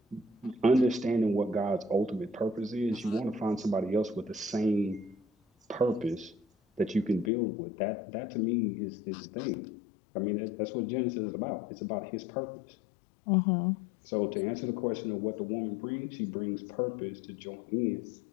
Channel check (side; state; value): right; drops out; at 7.3 s